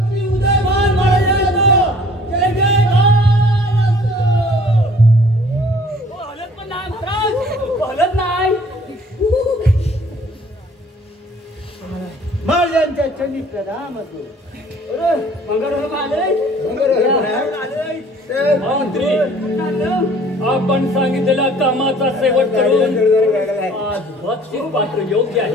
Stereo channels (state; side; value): normal; both; correlation 0.54